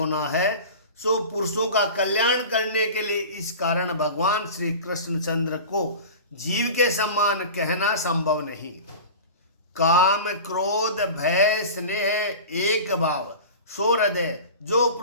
है, सो पुरुषों का कल्याण करने के लिए इस कारण भगवान श्री कृष्ण चंद्र को जीव के समान कहना संभव नहीं। काम क्रोध भय स्नेह एक भाव सो हृदय जो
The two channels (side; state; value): both; inverted; correlation -0.34